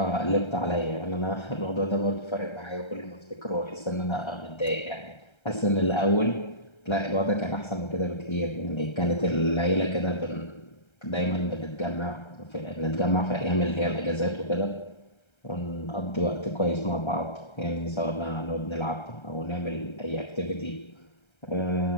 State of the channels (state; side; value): late; right; 1.3 ms